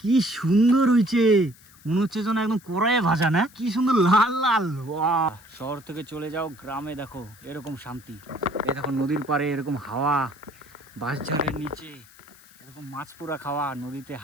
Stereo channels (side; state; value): left; noise; hiss, 25 dB below the sound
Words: কি সুন্দর হয়েছে, মনে হচ্ছে যেন একদম কড়াইয়ে ভাজা, না? কি সুন্দর লাল লাল। শহর থেকে চলে যাও গ্রামে, দেখো এরকম শান্তি। এই দেখো নদীর পাড়ে এরকম হাওয়া, বাঁশঝাড়ের নিচে এরকম মাছ পোড়া খাওয়া, নদীতে